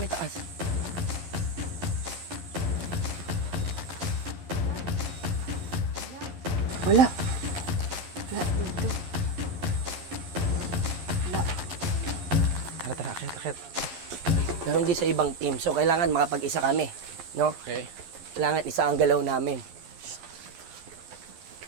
taas. Wala. Wala dito. Tara, akit. Ganon din sa ibang team. So, kailangan makapag-isa kami. No? Okay. Kailangan isa ang galaw namin.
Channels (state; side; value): late; left; 11 ms